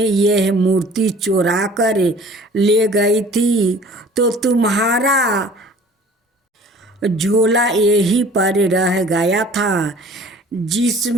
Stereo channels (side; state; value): both; normal; correlation 0.49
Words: यह मूर्ति चुरा कर ले गई थी तो तुम्हारा झोला यहीं पर रह गया था